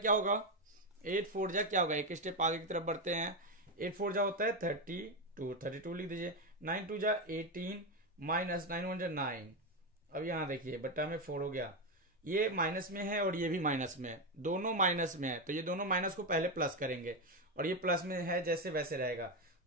होगा? 8 4 जा क्या होगा? एक स्टेप आगे की तरफ बढ़ते हैं। 8 4 जा होता है 32, 32 लिख दीजिए। 9 2 जा 18 माइनस 9 1 जा 9। अब यहां देखिए बट्टा में 4 हो गया। ये माइनस में है और ये भी माइनस में है, दोनों माइनस में है, तो ये दोनों माइनस को पहले प्लस करेंगे और ये प्लस में है जैसे वैसे रहेगा।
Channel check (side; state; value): both; normal; correlation 0.10